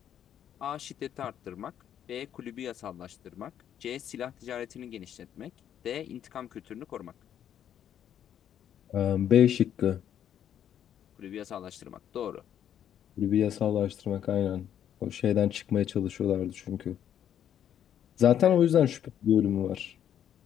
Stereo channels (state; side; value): quieter; right; 9.9 dB